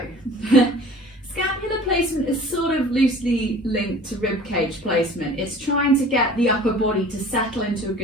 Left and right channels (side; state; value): both; normal; correlation 0.45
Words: scapular placement is sort of loosely linked to rib cage placement. It's trying to get the upper body to settle into a